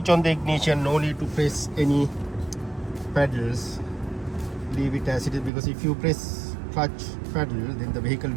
on the ignition, no need to press any pedals, leave it as it is, because if you press clutch pedal, then the vehicle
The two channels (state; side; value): drops out; left; at 5.5 s